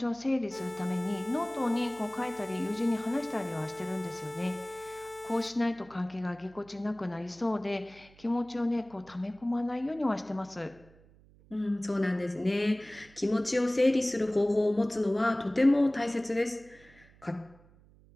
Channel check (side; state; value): right; noise; hum, 26 dB below the sound